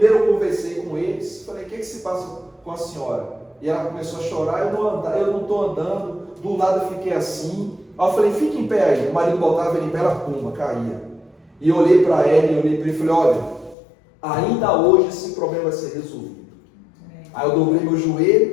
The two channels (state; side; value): drops out; right; at 13.8 s